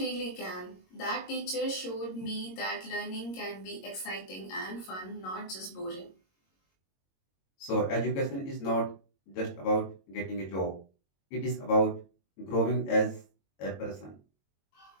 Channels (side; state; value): right; late; 22 ms